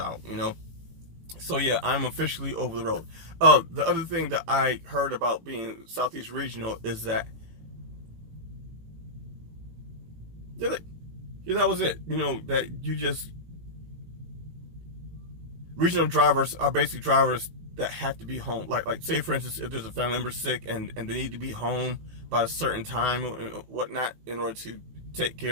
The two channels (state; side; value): late; left; 18 ms